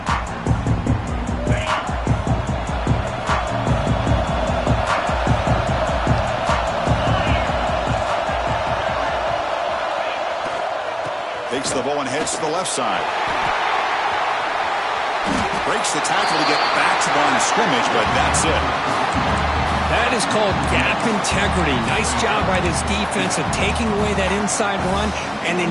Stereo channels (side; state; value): both; identical; correlation 1.00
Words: Takes the ball and heads to the left side. Breaks the tackle to get back to the line of scrimmage, but that's it. That is called gap integrity. Nice job by this defense of taking away that inside run and then